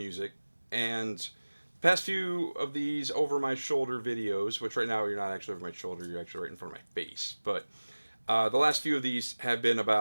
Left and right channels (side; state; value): both; inverted; correlation -1.00